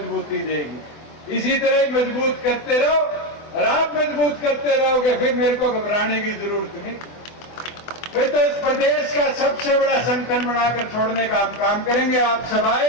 देगी। इसी तरह मजबूत करते रहो और आप मजबूत करते रहोगे, फिर मेरे को घबराने की जरूरत नहीं। फिर तो इस प्रदेश का सबसे बड़ा संगठन बनाकर छोड़ने का हम काम करेंगे। आप सब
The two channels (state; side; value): late; right; 24 ms